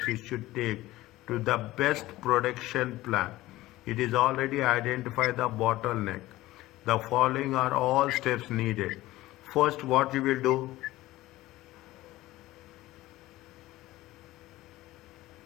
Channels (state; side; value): quieter; right; 17.2 dB